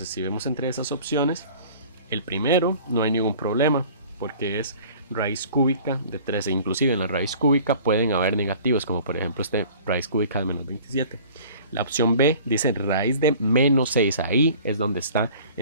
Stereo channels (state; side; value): inverted; both; correlation -0.47